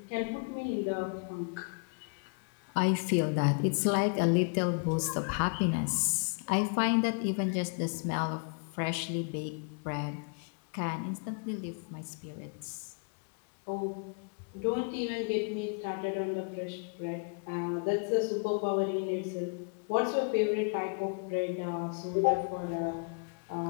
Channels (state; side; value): quieter; right; 37.6 dB